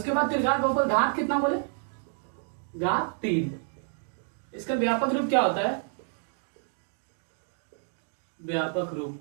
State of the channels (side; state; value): left; silent; 58 dB below the other